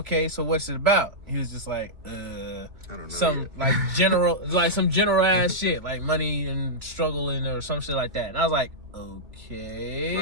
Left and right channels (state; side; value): late; left; 2.7 ms